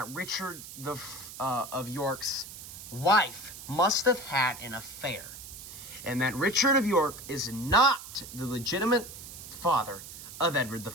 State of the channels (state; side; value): noise; right; hiss, 13 dB below the sound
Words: Richard of York's wife must have had an affair, and that Richard of York is not the legitimate father of Edward